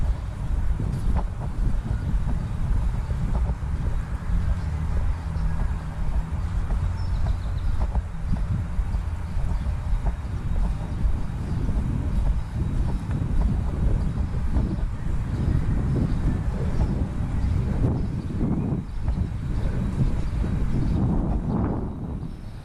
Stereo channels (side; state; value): both; identical; correlation 1.00